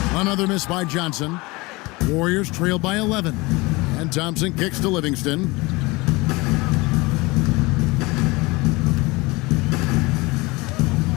Another miss by Johnson. Warriors trail by 11. And Thompson kicks to Livingston.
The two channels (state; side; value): quieter; right; 23.8 dB